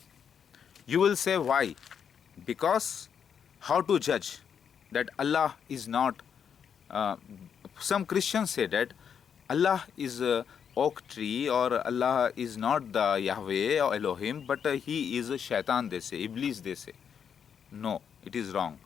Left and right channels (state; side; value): quieter; right; 7.5 dB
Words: You will say why? Because how to judge that Allah is not, some Christians say that Allah is a oak tree or Allah is not the Yahweh or Elohim, but he is a shaitan, they say, Iblis, they say. No, it is wrong.